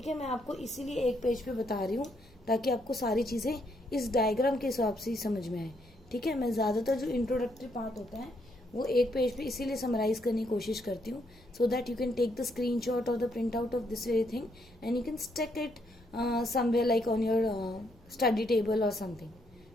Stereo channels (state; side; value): normal; both; correlation 0.74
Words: है, मैं आपको इसीलिए एक पेज पे बता रही हूँ ताकि आपको सारी चीजें इस डायग्राम के हिसाब से ही समझ में आए। ठीक है, मैं ज्यादातर जो इंट्रोडक्टरी पार्ट होता है वो एक पेज पे इसीलिए समराइज करने की कोशिश करती हूँ, so that you can take the screenshot और the print out of this very thing and you can stick it somewhere like on your study table और समथिंग।